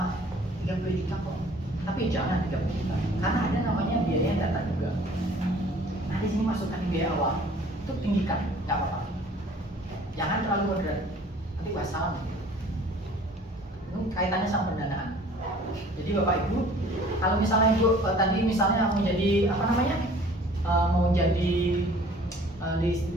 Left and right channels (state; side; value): normal; both; correlation 0.51